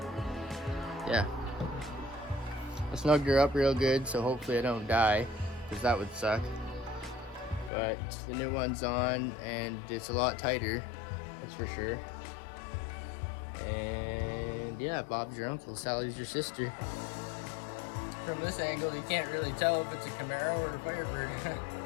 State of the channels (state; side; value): drops out; right; at 7.7 s